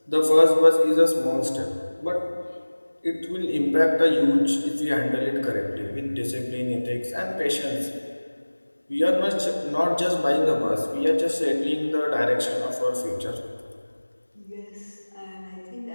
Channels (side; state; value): both; inverted; correlation -1.00